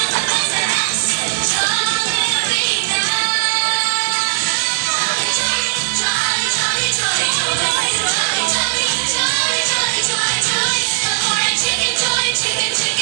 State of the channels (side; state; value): left; silent; digital silence